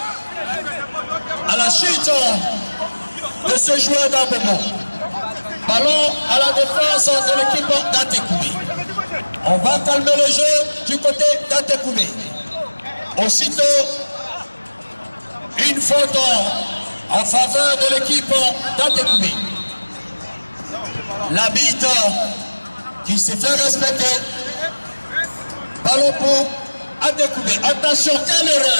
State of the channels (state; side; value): inverted; both; correlation -1.00